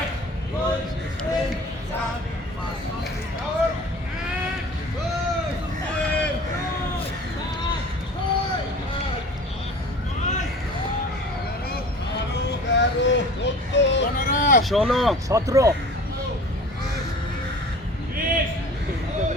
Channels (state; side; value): normal; both; correlation 0.42